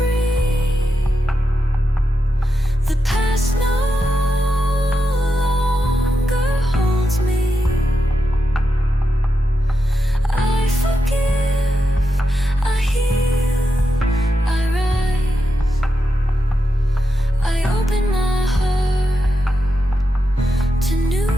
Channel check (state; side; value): normal; both; correlation 0.87